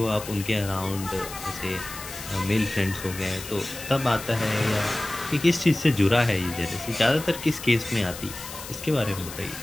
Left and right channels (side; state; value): left; noise; hiss, 12 dB below the sound